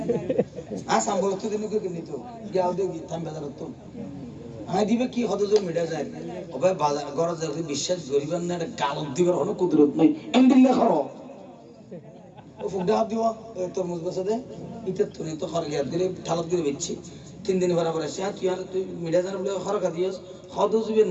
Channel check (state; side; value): identical; both; correlation 1.00